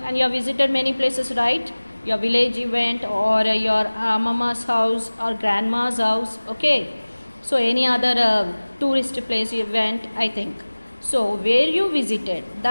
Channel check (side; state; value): both; inverted; correlation -1.00